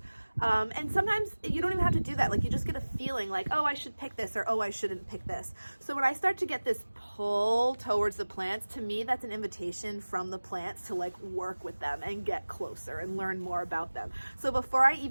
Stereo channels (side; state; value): both; inverted; correlation -1.00